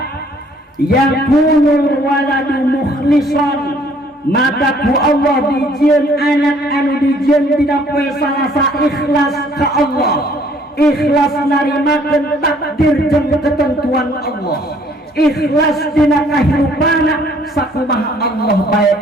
Yakunul waladu mukhlisan, maka ku Allah dijieun anak anu dijieun dina poe salasa ikhlas ka Allah, ikhlas narimakeun takdir jeung ketentuan Allah, ikhlas dina kahirupana sakumaha Allah bae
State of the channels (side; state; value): both; normal; correlation 0.61